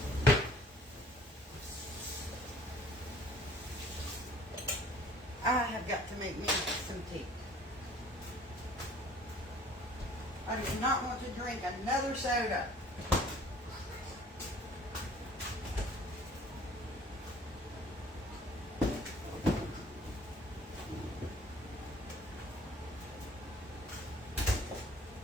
I have got to make me some tea. I do not want to drink another soda.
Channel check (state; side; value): normal; both; correlation 0.54